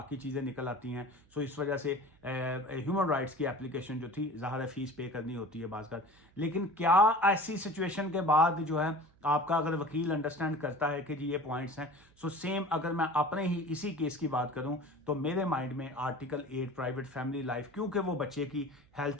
चीज़ें निकल आती हैं। इस वजह से ह्यूमन राइट्स की एप्लीकेशन जो थी ज़ाहिर फीस पे करनी होती है बाज़। लेकिन क्या ऐसी सिचुएशन के बाद जो है आपका अगर वकील अंडरस्टैंड करता है कि जी ये पॉइंट्स हैं, सेम अगर मैं अपने ही इसी केस की बात करूं तो मेरे माइंड में आर्टिकल 8 प्राइवेट फैमिली लाइफ, क्योंकि वो बच्चे की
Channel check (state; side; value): noise; right; hum, 30 dB below the sound